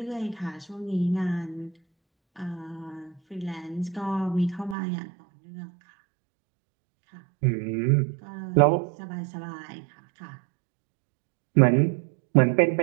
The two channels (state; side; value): drops out; left; at 4.8 s